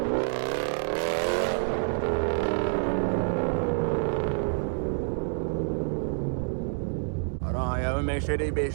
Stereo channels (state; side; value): silent; left; 60 dB below the other